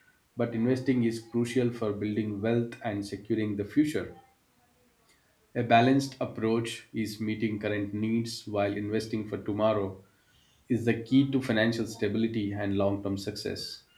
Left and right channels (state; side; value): identical; both; correlation 1.00